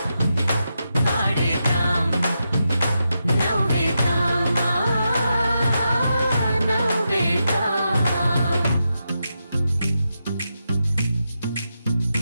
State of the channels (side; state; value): both; inverted; correlation -0.86